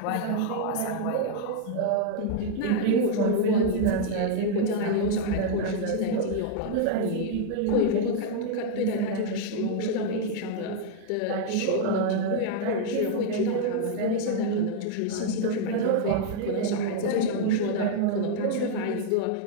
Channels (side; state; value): both; different; correlation 0.00